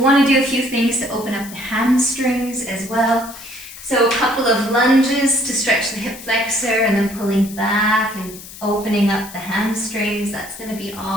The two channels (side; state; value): left; noise; hiss, 15 dB below the sound